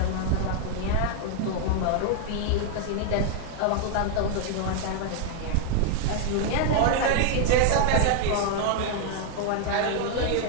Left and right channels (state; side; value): different; both; correlation 0.00